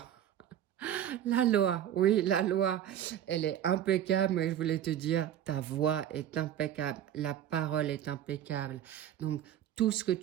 La loi, oui, la loi, elle est impeccable, mais je voulais te dire, ta voix est impeccable, la parole est impeccable. Donc, tout ce que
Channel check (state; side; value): quieter; left; 10.9 dB